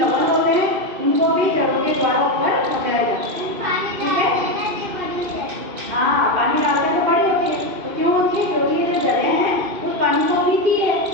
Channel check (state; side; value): late; left; 2.5 ms